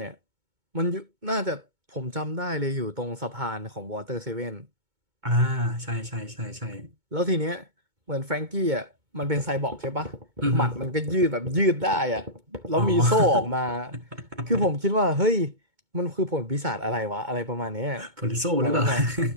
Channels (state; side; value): late; left; 2.2 ms